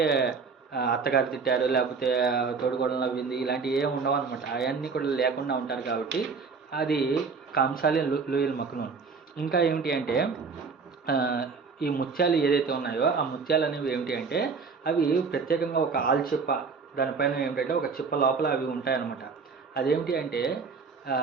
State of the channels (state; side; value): quieter; left; 5.0 dB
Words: అత్తగారు తిట్టారు, లేకపోతే తోడుగోడలు నవ్వింది, ఇలాంటివి ఏమి ఉండవు అనమాట. అవన్నీ కూడా లేకుండా ఉంటారు కాబట్టి అది కాంసాలి లూయిల్ మక్నూన్. ఇంకా ఏమిటి అంటే ఈ ముత్యాలు ఏదైతే ఉన్నాయో ఆ ముత్యాలు అనేవి ఏమిటి అంటే అవి ప్రత్యేకంగా ఒక ఆల్చిప్ప దానిపైన ఏమిటంటే ఒక చిప్ప లోపల అవి ఉంటాయన్నమాట. అదేమిటి అంటే